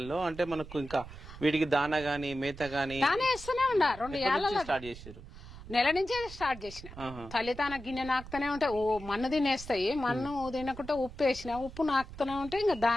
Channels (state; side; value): noise; right; rumble, 14 dB below the sound